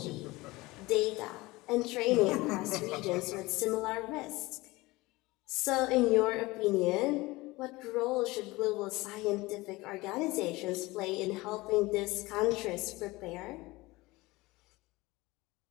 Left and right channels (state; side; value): quieter; right; 21.1 dB